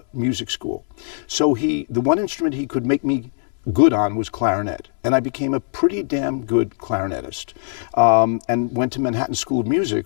music school. So the one instrument he could make me good on was clarinet, and I became a pretty damn good clarinetist, and went to Manhattan School of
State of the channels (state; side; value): silent; right; 65 dB below the other